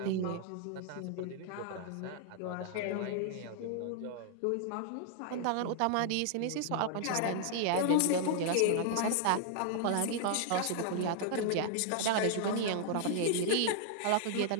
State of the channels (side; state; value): both; different; correlation 0.00